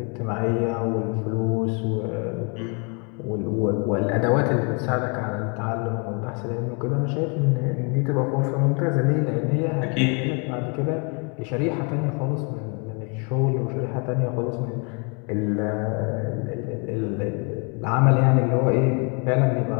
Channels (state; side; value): quieter; right; 35.1 dB